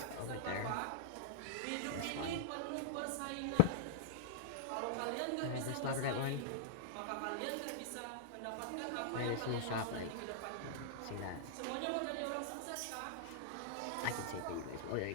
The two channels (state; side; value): different; both; correlation -0.02